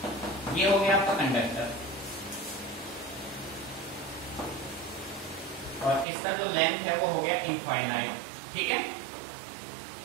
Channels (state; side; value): drops out; left; at 6.1 s